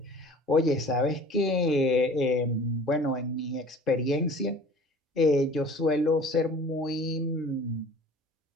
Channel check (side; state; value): both; normal; correlation 0.46